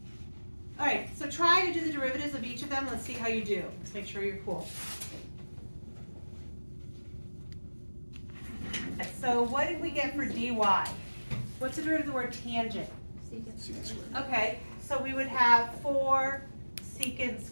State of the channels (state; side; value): inverted; both; correlation -1.00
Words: All right, so try to do the derivatives of each of them. Let's see how you do. Let's make sure you're cool. So what did we get for dy? What's the derivative of the word tangent? Okay, so we would have 4 secant